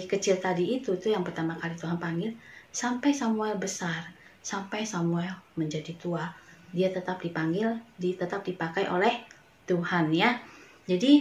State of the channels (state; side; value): identical; both; correlation 1.00